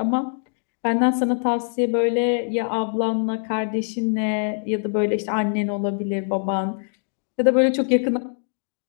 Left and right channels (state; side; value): silent; right; digital silence